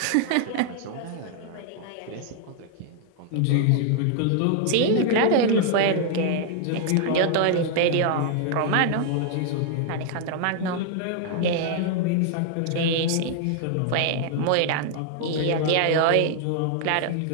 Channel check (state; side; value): different; both; correlation 0.00